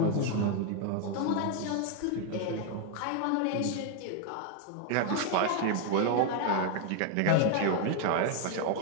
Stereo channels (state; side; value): different; both; correlation 0.00